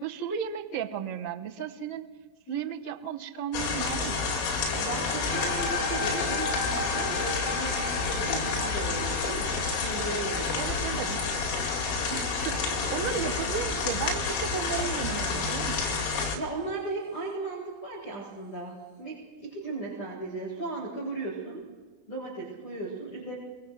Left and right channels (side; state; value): right; late; 20 ms